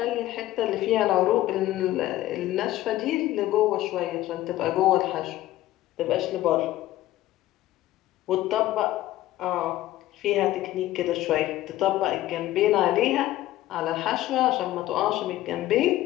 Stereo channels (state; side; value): quieter; right; 15.2 dB